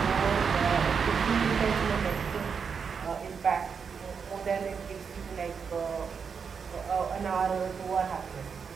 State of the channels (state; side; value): quieter; left; 6.2 dB